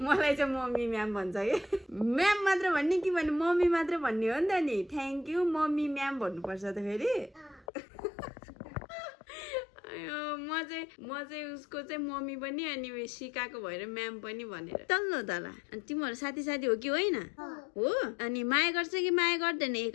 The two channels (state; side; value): drops out; right; at 7.7 s